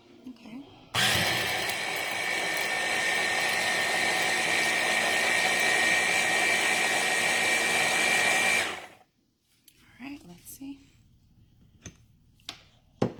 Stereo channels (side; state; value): both; identical; correlation 1.00